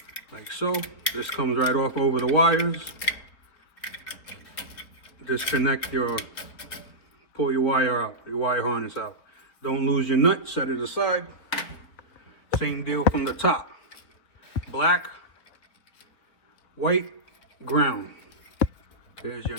Like so. This comes right off over the wires. Disconnect pull your wire out, your wire harness out. Don't lose your nut, set it aside. Same deal from the top. Black, white, ground. There's your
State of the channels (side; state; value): right; late; 4.2 ms